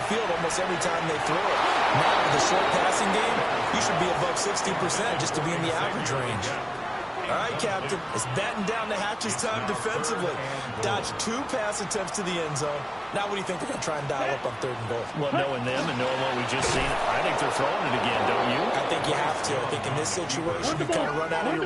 almost every time they threw it. Now with the short passing game, you should be above 60% just to be in the average range. All right, Captain, it's batten down the hatches time defensively. Dodged 2 pass attempts to the end zone. Now what do you think they're going to try and dial up on 3rd and goal? Well, knowing them and knowing what we just seen, I think they're throwing it again, don't you? I think you have to. I think in this situation, you kind of run out of your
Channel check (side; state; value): both; identical; correlation 1.00